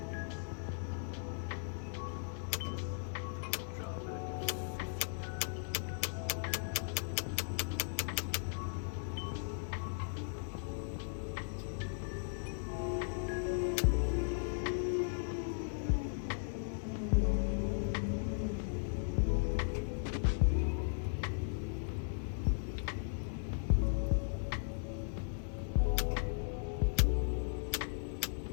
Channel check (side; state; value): right; silent; 53 dB below the other